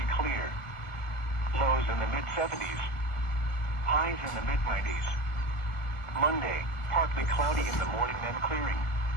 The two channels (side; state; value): right; late; 1.4 ms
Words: clear. Lows in the mid-70s. Highs in the mid-90s. Monday, partly cloudy in the morning then clearing.